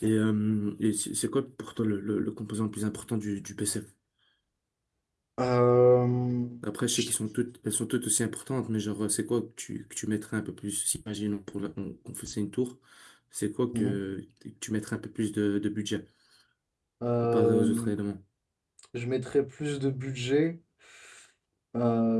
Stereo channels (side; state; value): both; identical; correlation 1.00